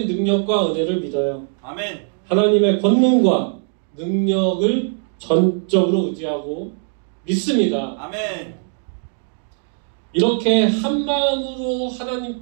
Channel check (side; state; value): left; silent; 58 dB below the other